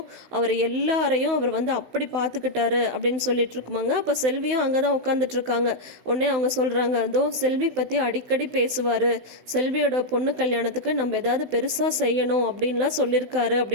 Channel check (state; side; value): late; left; 16 ms